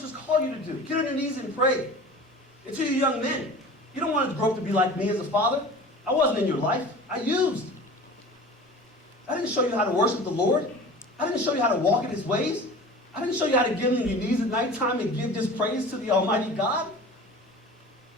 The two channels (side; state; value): both; normal; correlation 0.39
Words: call you to do. Get on your knees and pray. And to you young men, you don't want to grow up to be like me as a father. I wasn't in your life. I used. I didn't show you how to worship the Lord. I didn't show you how to walk in his ways. I didn't show you how to get on your knees at nighttime and give just praise to the Almighty God.